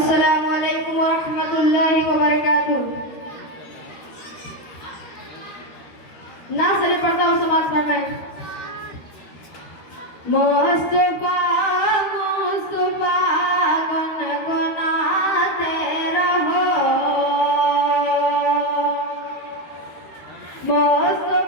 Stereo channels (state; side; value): late; right; 13 ms